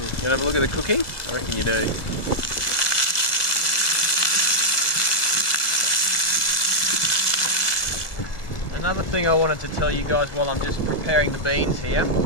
want to have a look at the cooking? I reckon you do. Another thing I wanted to tell you guys while I'm just preparing the beans here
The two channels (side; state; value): right; late; 1.4 ms